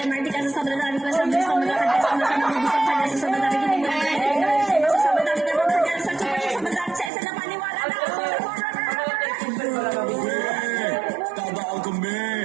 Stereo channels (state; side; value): drops out; left; at 7.1 s